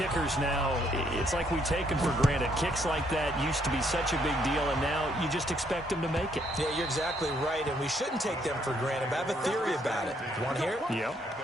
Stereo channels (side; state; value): both; normal; correlation 0.71